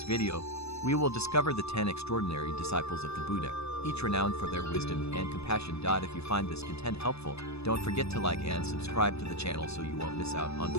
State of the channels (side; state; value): right; late; 0.79 ms